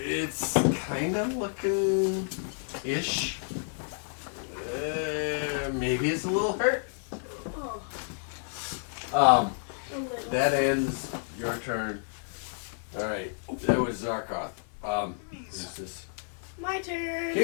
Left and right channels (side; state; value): right; silent; 58 dB below the other